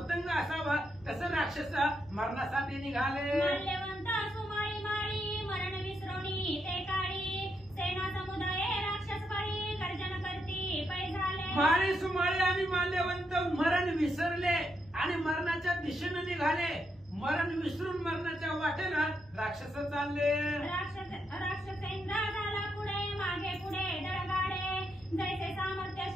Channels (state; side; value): normal; both; correlation 0.80